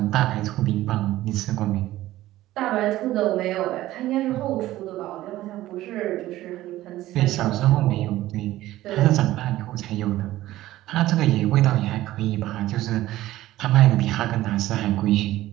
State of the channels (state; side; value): quieter; left; 15.5 dB